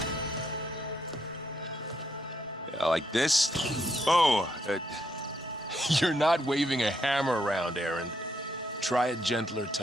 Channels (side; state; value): both; normal; correlation 0.76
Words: Like this? Oh, You're not waving a hammer around, Aaron. Try a gentler